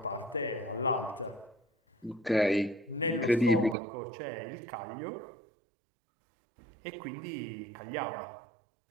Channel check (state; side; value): drops out; left; at 3.8 s